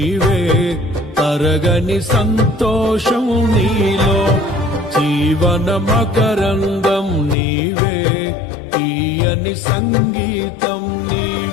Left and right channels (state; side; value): drops out; right; at 7.4 s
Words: తరగని సంతోషం నీలో, జీవన మకరందం నీవే, తీయని సంగీతం